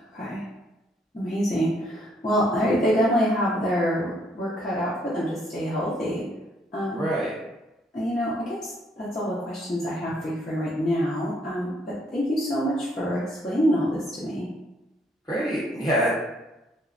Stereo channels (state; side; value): normal; both; correlation 0.68